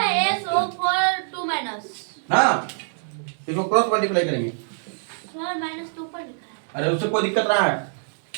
SO4 2 माइनस, हाँ इसको क्रॉस मल्टीप्लाई करेंगे, सर माइनस 2 पर लिखा है, अरे उससे कोई दिक्कत रहा है,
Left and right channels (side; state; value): left; silent; digital silence